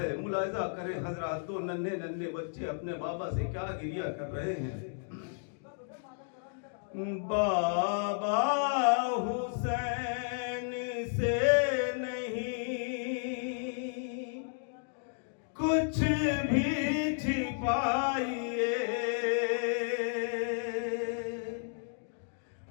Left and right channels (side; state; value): right; silent; digital silence